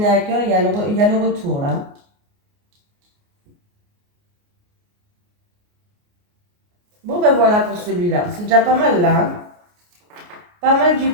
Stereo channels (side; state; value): left; late; 29 ms